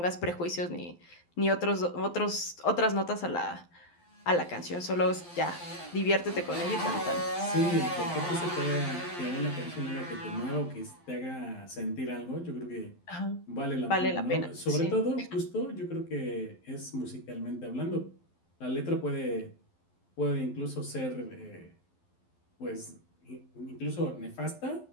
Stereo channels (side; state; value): right; late; 12 ms